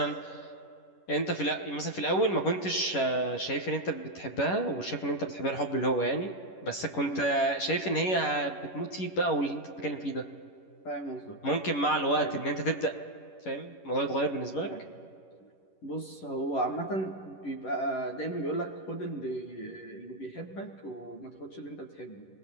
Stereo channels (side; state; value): right; late; 11 ms